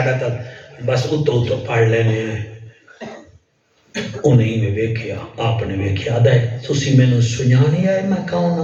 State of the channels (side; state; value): both; identical; correlation 1.00